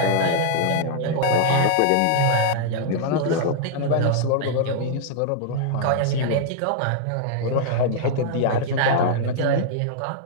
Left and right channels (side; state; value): both; different; correlation -0.01